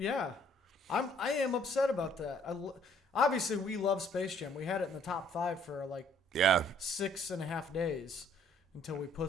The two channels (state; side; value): normal; both; correlation 0.61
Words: am upset about that. Obviously, we love Space Jam. We had it in the top 5 for like 6.5 days. Until we